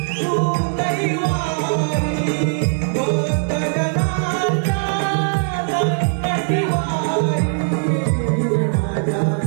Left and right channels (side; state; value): left; silent; digital silence